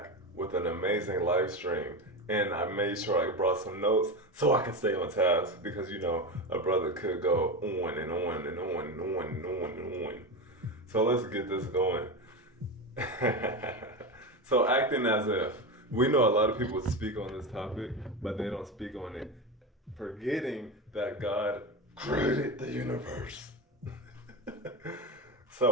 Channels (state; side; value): normal; both; correlation 0.19